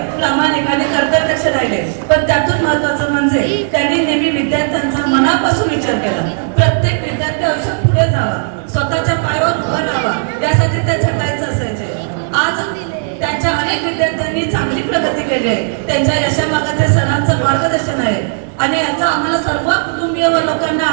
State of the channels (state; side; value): silent; left; digital silence